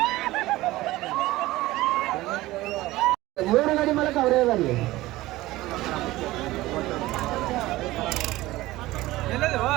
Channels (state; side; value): quieter; left; 17.9 dB